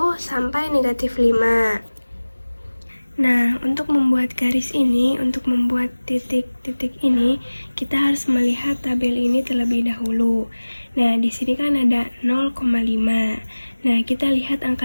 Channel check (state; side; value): inverted; both; correlation -1.00